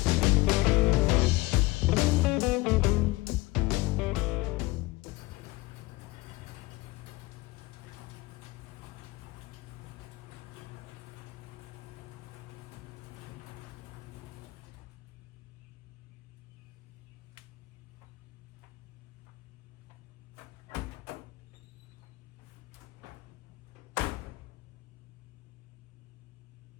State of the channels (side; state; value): right; quieter; 21.0 dB